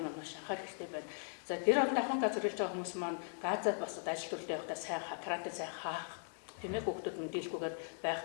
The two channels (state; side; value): silent; right; 52 dB below the other